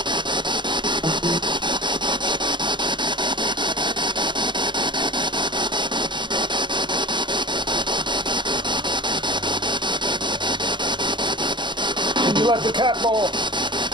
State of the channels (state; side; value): late; left; 0.23 ms